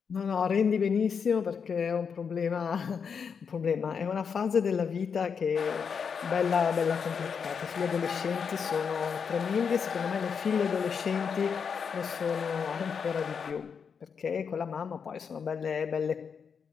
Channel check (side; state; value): right; quieter; 6.4 dB